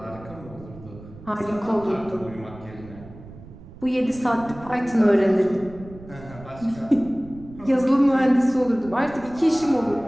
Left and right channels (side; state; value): right; noise; rumble, 18 dB below the sound